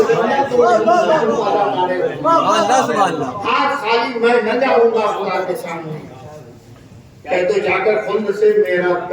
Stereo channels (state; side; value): identical; both; correlation 1.00